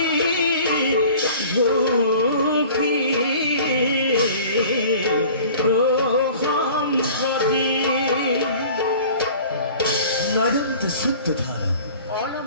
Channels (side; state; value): both; inverted; correlation -0.45